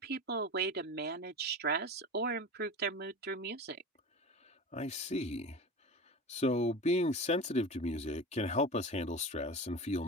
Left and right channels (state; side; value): normal; both; correlation 0.30